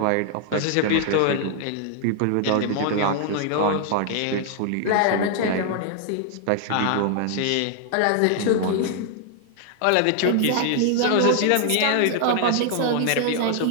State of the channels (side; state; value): both; different; correlation 0.00